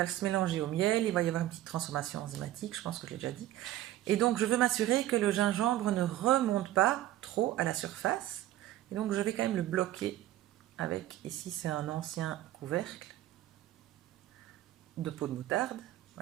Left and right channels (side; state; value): left; quieter; 14.1 dB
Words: se mélanger au miel, il va y avoir une petite transformation enzymatique, je pense que je l'ai déjà dit. Et donc je veux m'assurer que le gingembre ne remonte pas trop à la surface. Et donc je vais quand même le bloquer avec, ici c'est un ancien couvercle de peau de moutarde,